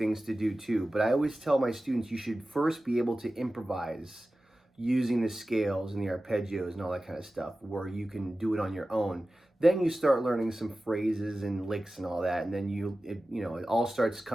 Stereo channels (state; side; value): normal; both; correlation 0.95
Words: to do too. But I always tell my students you should first be able to improvise using the scales and the arpeggios and all that kind of stuff where you can do it on your own. Then you start learning some phrases and licks and all that, and then it all starts